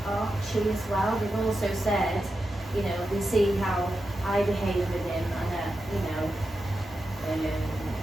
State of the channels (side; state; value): both; normal; correlation 0.89